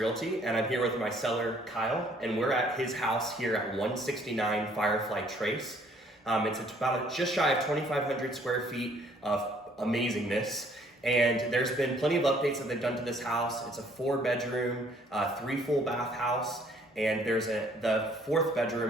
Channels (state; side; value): normal; both; correlation 0.61